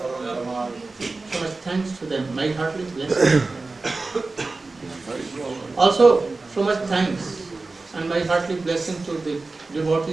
So much thanks to them. My heartily blessing. Also, so much thanks and my heartily blessing to the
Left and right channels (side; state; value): left; quieter; 3.6 dB